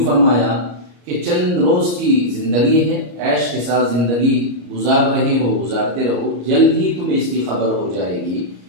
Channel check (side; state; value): left; late; 34 ms